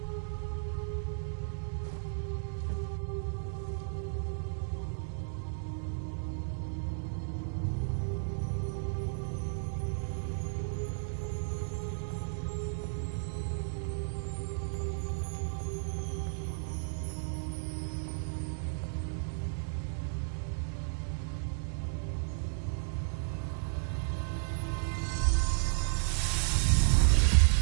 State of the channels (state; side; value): silent; left; digital silence